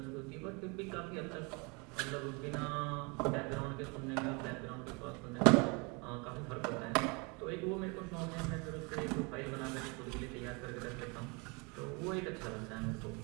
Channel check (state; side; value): quieter; left; 30.1 dB